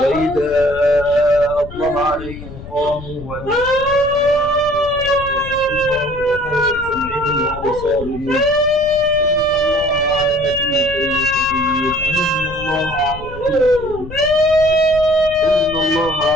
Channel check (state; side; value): noise; left; rumble, 13 dB below the sound